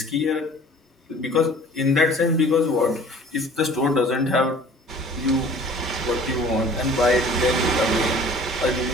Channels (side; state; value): both; normal; correlation 0.48